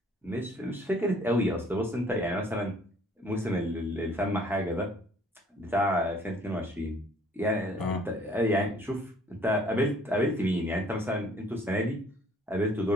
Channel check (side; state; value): both; normal; correlation 0.58